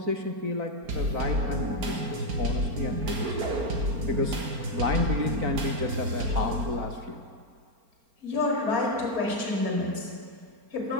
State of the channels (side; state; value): left; late; 4.4 ms